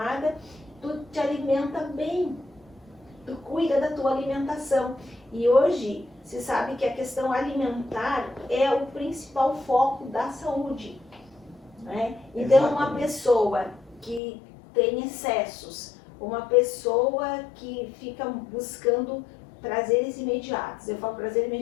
tu te alimenta bem, tu cuida da tua alimentação. E hoje se sabe que a questão alimentar é o principal foco da saúde, né? Então uma pessoa que tem excessos, uma pessoa que fica buscando prazeres imediatos, eu falo prazer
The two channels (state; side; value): drops out; right; at 14.2 s